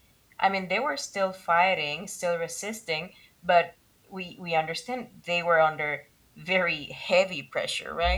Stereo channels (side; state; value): both; identical; correlation 1.00